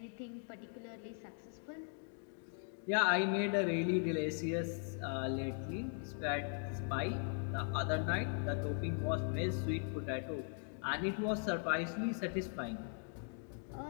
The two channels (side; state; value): right; silent; 51 dB below the other